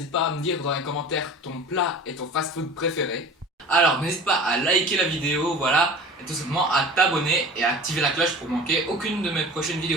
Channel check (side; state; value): both; normal; correlation 0.39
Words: pas à me dire dans les commentaires ton plat et ton fast-food préféré. Alors, n'hésite pas à liker la vidéo, voilà, et tout simplement à t'abonner et à activer la cloche pour manquer aucune de mes prochaines